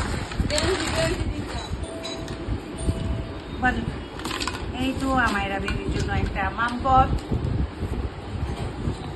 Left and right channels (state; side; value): identical; both; correlation 1.00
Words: এই তো আমায়রা বেবির জন্য একটা মামপট।